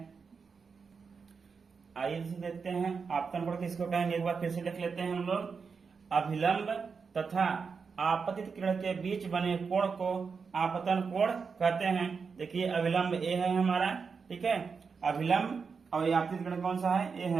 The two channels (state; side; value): quieter; left; 5.4 dB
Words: आइए देखते हैं आपतन कोण किसको कहेंगे, एक बार फिर से लिख लेते हैं हम लोग। अभिलंब तथा आपतित किरण के बीच बने कोण को आपतन कोण कहते हैं। देखिए अभिलंब ए है हमारा, ठीक है, अभिलंब और आपतित किरण कौन सा है, ए